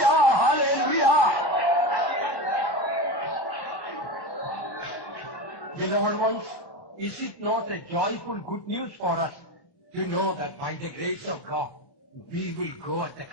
hallelujah. Beloved ones, is it not a joyful good news for us to know that by the grace of God, we will go at the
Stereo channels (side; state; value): left; late; 29 ms